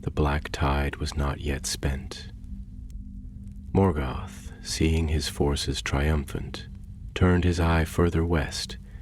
black tide was not yet spent. Morgoth, seeing his forces triumphant, turned his eye further west,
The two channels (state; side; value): identical; both; correlation 1.00